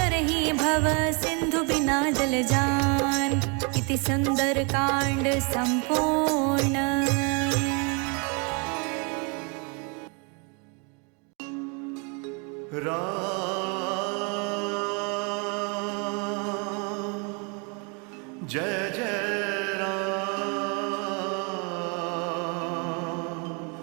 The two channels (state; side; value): quieter; left; 34.0 dB